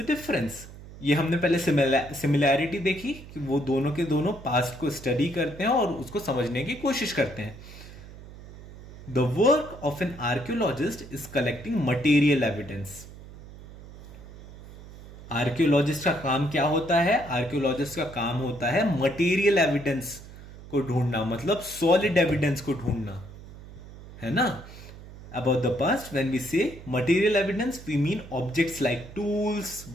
difference? ये हमने पहले सिमिलैरिटी देखी कि वो दोनों के दोनों पास्ट को स्टडी करते हैं और उसको समझने की कोशिश करते हैं। The work of an archaeologist is collecting material evidence. Archaeologist का काम क्या होता है? आर्कियोलॉजिस्ट का काम होता है मटेरियल एविडेंस को ढूंढना, मतलब सॉलिड एविडेंस को ढूंढना, है ना। About the past, when we say material evidence, we mean objects like tools,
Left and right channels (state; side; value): noise; right; hum, 16 dB below the sound